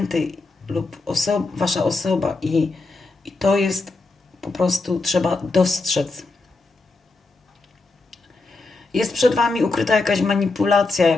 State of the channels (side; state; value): right; quieter; 3.5 dB